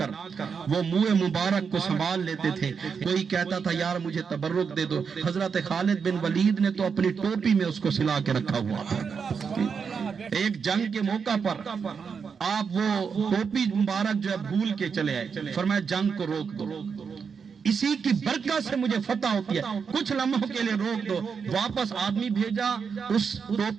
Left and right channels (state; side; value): quieter; left; 6.1 dB